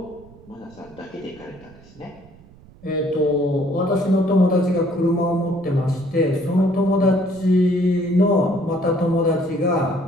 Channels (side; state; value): right; noise; rumble, 24 dB below the sound